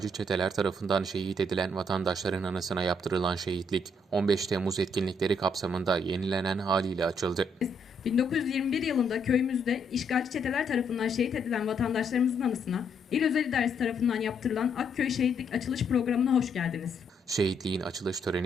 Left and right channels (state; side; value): normal; both; correlation 0.73